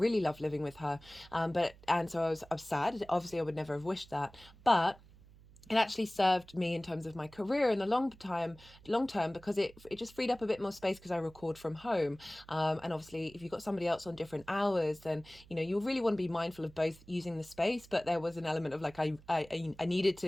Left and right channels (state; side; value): noise; right; hum, 23 dB below the sound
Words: loved living with her, so I was sad. Obviously I would never have wished that, but it actually served me in terms of my career in the long term, because it just freed up a bit more space because I record from home. And obviously if you've got somebody else on different hours, then you really want to be mindful of both using the space, but there was an element of like I needed